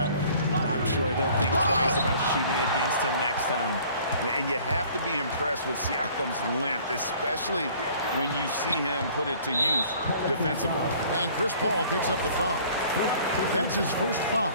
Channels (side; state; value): both; inverted; correlation -0.53